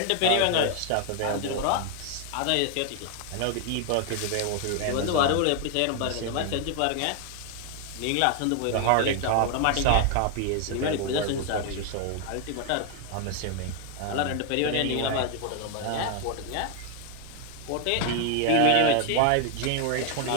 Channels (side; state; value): both; different; correlation 0.00